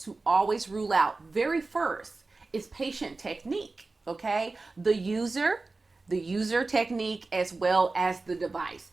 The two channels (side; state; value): left; quieter; 3.6 dB